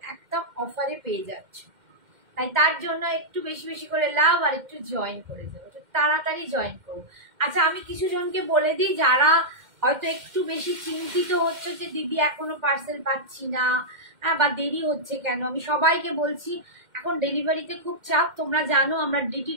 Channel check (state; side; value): late; left; 2.1 ms